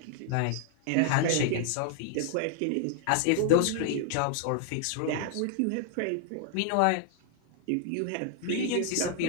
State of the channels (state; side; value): different; both; correlation -0.01